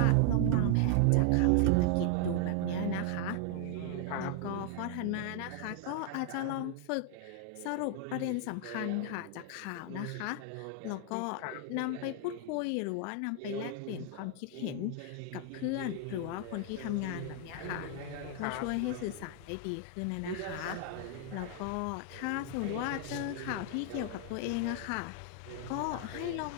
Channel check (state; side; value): different; both; correlation 0.00